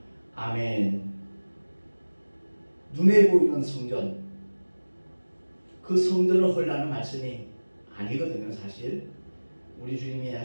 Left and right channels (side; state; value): both; inverted; correlation -1.00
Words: 아멘. 눈에 보이는 성전 그 성전을 헐라는 말씀이 아니거든요. 사실 우리 주님이